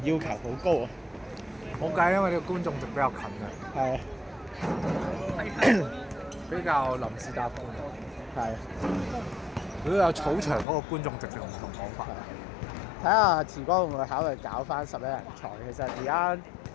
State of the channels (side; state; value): right; drops out; at 10.7 s